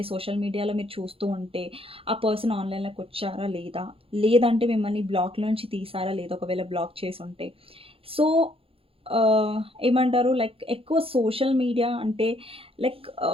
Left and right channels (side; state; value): left; late; 0.27 ms